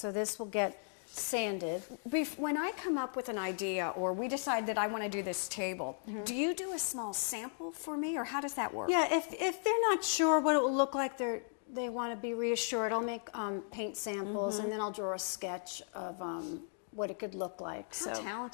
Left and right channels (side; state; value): right; silent; digital silence